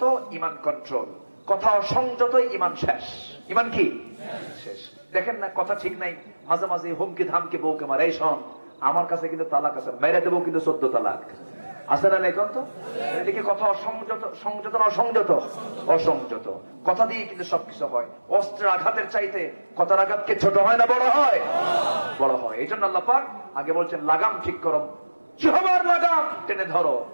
ইমান কন্ট্রোল। কথা সংযত, ইমান শেষ। ইমান কি শেষ? দেখেন না, কথা ঠিক নাই, মাঝে মাঝে হুমকি ধামকি বউকে মারে, এই শোন আমার কাছে কিন্তু তালাক আছে, মেরে দেবো কিন্তু 14 তালাক আছে না? এখন তো এদিকে কথা অসংযত, সংযত না অসংযত? অসংযত। কথা দিয়ে কিন্তু সবকিছু হয়। অস্ত্রের আঘাতের চাইতে কথার আঘাতকে ছোট হয় না বড় হয়? বড় হয়। এই জন্য আল্লাহ পাক আগে বলছেন লাগাম ঠিক করো, জিহ্বার লাগাম টেনে ধরো,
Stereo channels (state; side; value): inverted; both; correlation -1.00